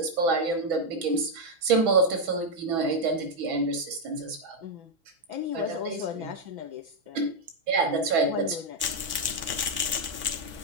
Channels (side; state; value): left; late; 6.1 ms